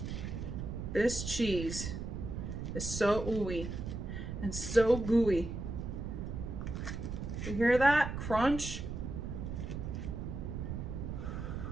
This cheese is so ooey and so gooey. You hear that crunch?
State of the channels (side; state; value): right; noise; rumble, 5 dB below the sound